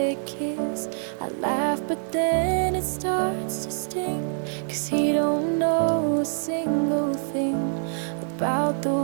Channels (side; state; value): left; silent; digital silence